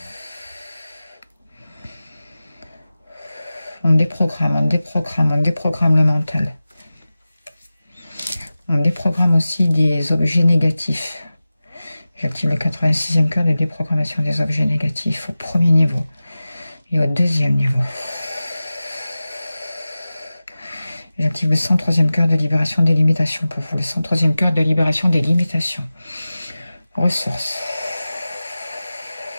On déprogramme, on déprogramme, on déprogramme le mental. On déprogramme aussi des objets négatifs. J'active le 86e cœur de déprogrammation des objets négatifs au premier niveau et au deuxième niveau. J'active le 103e cœur de libération des limitations pour vous. Le 103e cœur de libération des limitations. Ressources.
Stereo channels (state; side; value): inverted; both; correlation -0.96